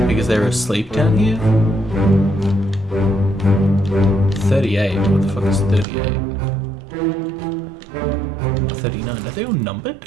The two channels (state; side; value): drops out; left; at 5.9 s